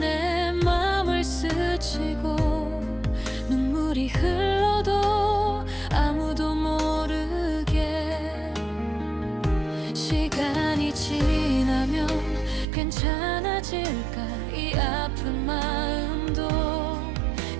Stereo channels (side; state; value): left; drops out; at 12.7 s